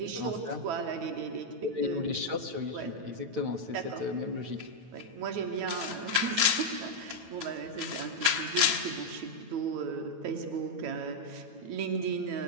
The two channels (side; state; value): left; late; 9.1 ms